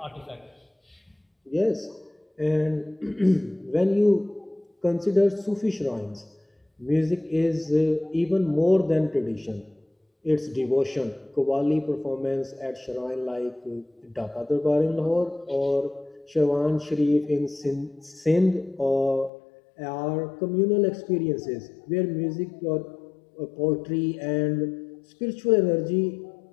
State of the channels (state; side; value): drops out; right; at 19.3 s